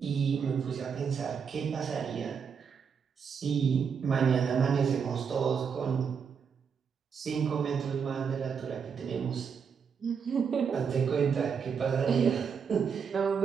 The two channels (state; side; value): quieter; left; 6.5 dB